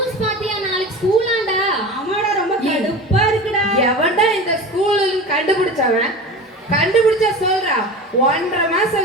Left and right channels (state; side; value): normal; both; correlation 0.32